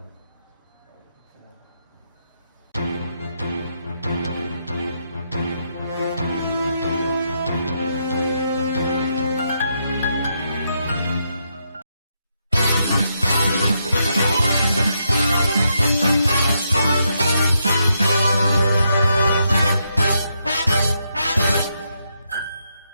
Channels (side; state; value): both; inverted; correlation -0.80